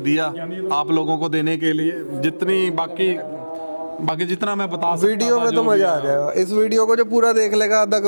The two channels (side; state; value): both; inverted; correlation -1.00